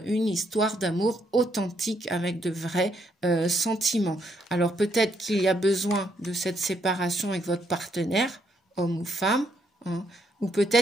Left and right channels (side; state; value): both; normal; correlation 0.74